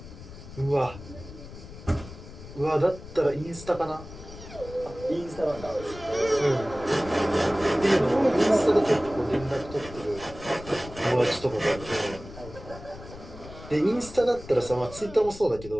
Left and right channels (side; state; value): left; noise; rumble, 15 dB below the sound